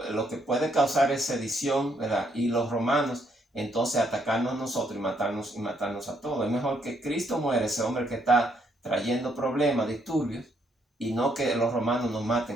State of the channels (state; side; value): normal; both; correlation 0.72